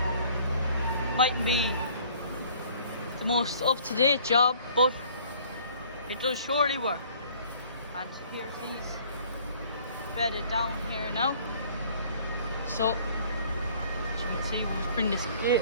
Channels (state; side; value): inverted; both; correlation -0.55